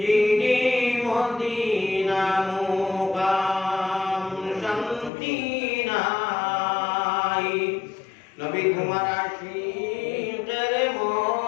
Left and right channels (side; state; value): right; drops out; at 5.1 s